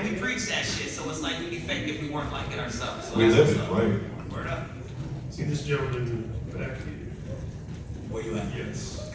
We preach that shit, so it's like we'd be fake if we weren't like it ourselves. So We that's live it, what's up. right? Word up. See this gentleman back here? Where you at? Yes.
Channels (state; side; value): identical; both; correlation 1.00